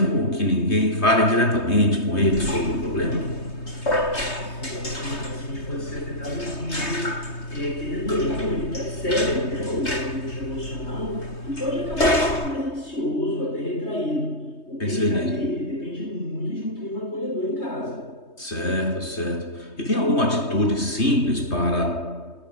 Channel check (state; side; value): late; right; 3.2 ms